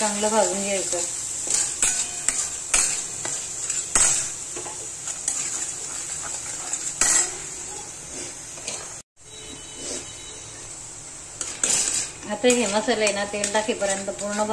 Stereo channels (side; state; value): both; identical; correlation 1.00